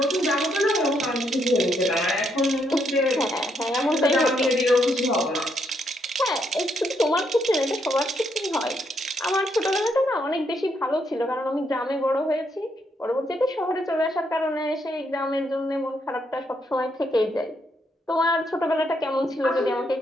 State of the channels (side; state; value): both; normal; correlation 0.76